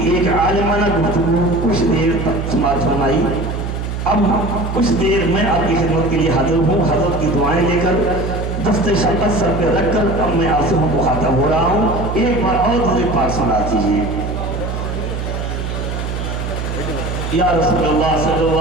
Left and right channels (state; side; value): noise; right; hum, 4 dB below the sound